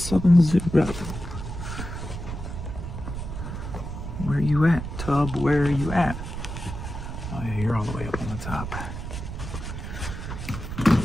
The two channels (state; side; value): noise; right; rumble, 7 dB below the sound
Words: Where you at, Tub? Where are you at? Oh yeah, you're all the way up on the top.